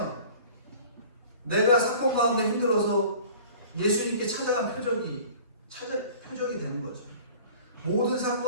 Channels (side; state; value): both; inverted; correlation -0.46